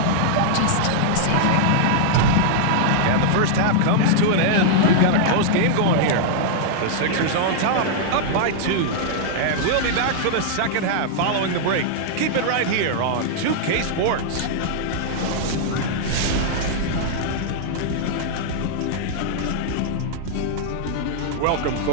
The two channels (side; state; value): both; different; correlation -0.01